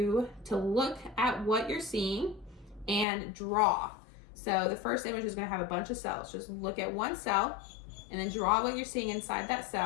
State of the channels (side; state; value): right; drops out; at 3.1 s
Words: to look at what you're seeing and draw. So the first image is going to have a bunch of cells. Just look at one cell and then draw what you're seeing inside that